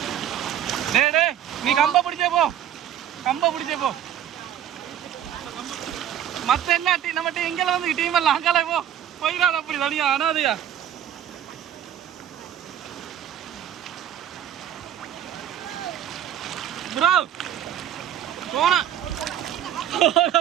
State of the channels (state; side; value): quieter; left; 10.4 dB